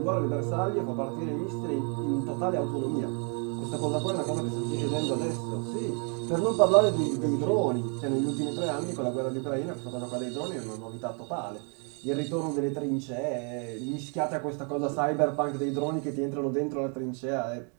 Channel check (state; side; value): quieter; left; 38.6 dB